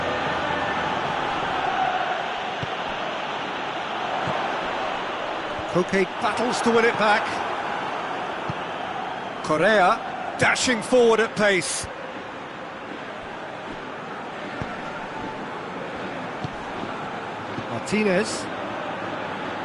Coop battles to win it back. Correa dashing forward at pace. Martinez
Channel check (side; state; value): both; identical; correlation 1.00